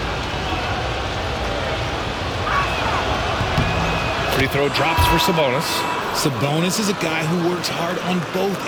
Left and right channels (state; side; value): identical; both; correlation 1.00